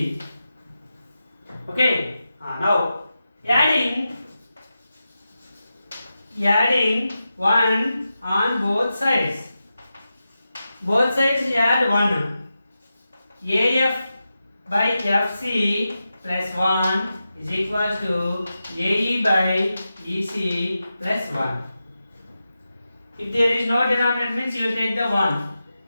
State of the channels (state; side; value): inverted; both; correlation -0.91